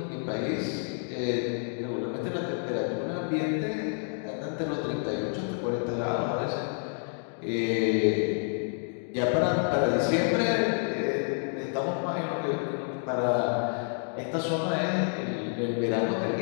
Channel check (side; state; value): right; silent; 55 dB below the other